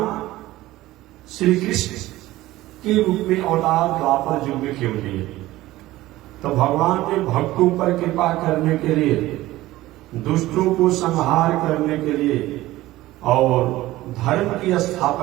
श्री कृष्ण के रूप में अवतार द्वापर युग में क्यों लिए? तो भगवान ने भक्तों पर कृपा करने के लिए, दुष्टों को संहार करने के लिए और धर्म की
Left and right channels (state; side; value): quieter; left; 16.9 dB